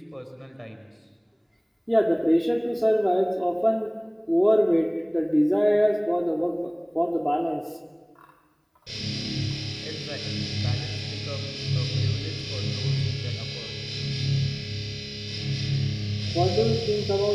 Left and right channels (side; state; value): both; identical; correlation 1.00